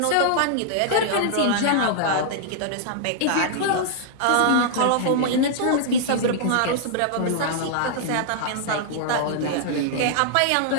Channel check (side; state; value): both; different; correlation -0.01